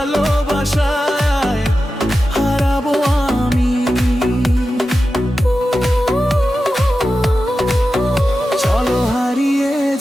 হারাবো আমি। চলো হারিয়ে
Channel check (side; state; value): both; normal; correlation 0.92